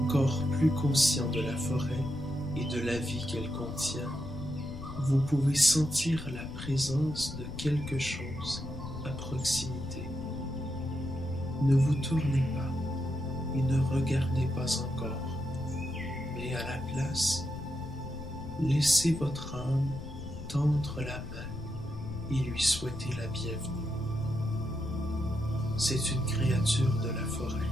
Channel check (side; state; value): left; noise; rumble, 10 dB below the sound